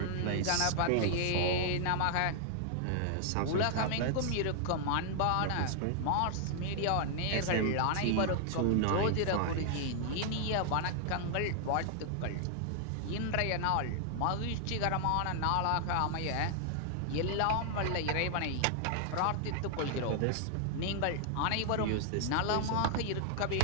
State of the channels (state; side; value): different; both; correlation 0.00